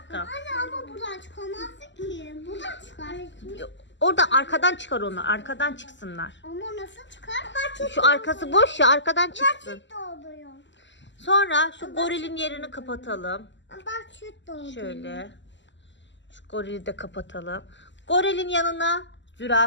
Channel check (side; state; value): right; late; 0.53 ms